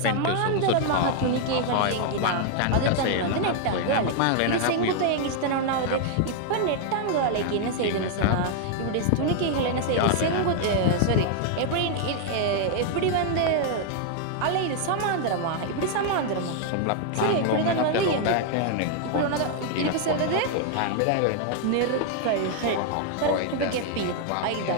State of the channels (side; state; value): both; different; correlation 0.00